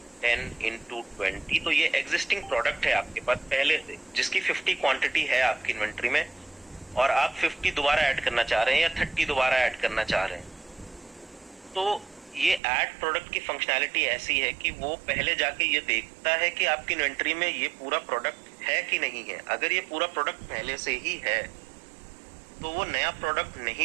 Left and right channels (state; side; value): drops out; left; at 12.6 s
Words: 10x20, तो ये एग्जिस्टिंग प्रोडक्ट है आपके पास पहले से, जिसकी 50 क्वांटिटी है आपकी इन्वेंट्री में, और आप 50 दोबारा ऐड करना चाह रहे हैं या 30 दोबारा ऐड करना चाह रहे हैं। तो ये ऐड प्रोडक्ट की फंक्शनैलिटी ऐसी है कि वो पहले जाके ये देखता है कि आपकी इन्वेंट्री में ये पूरा प्रोडक्ट है कि नहीं है। अगर ये पूरा प्रोडक्ट पहले से ही है तो वो नया प्रोडक्ट